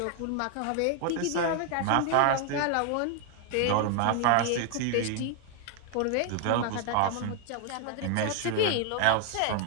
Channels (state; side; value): different; both; correlation 0.00